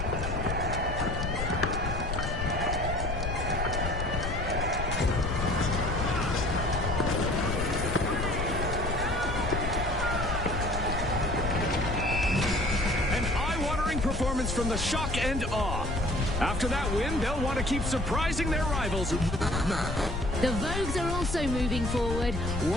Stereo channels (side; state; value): left; noise; rumble, 3 dB below the sound